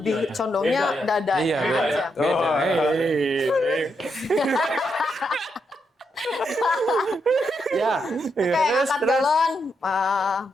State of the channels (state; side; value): normal; both; correlation 0.81